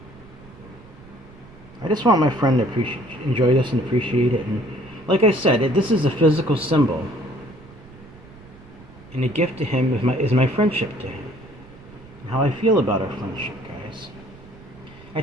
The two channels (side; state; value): right; noise; rumble, 21 dB below the sound